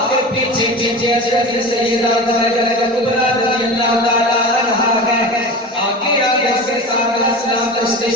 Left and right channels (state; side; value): normal; both; correlation 0.30